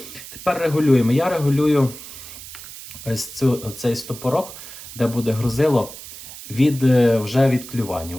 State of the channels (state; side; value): noise; right; hiss, 14 dB below the sound